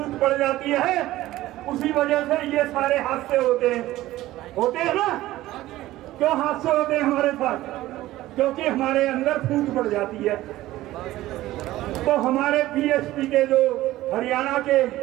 पड़ जाती है, उसी वजह से ये सारे हादसे होते हैं ना। क्यों हादसे होते हैं हमारे साथ? क्योंकि हमारे अंदर फूट पड़ जाती है। तो हमारे पीएचपी के जो हरियाणा के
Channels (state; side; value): quieter; left; 16.0 dB